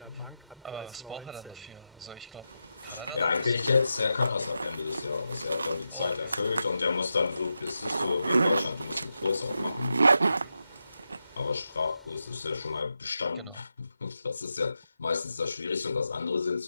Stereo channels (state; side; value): inverted; both; correlation -0.89